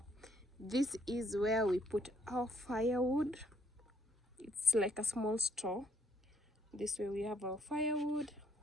this is where we put our firewood. It's like a small store. This way we have our firewood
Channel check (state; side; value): normal; both; correlation 0.68